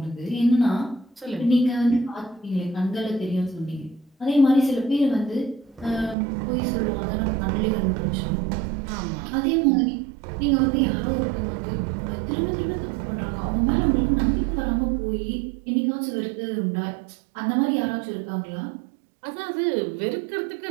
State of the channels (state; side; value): drops out; left; at 6.2 s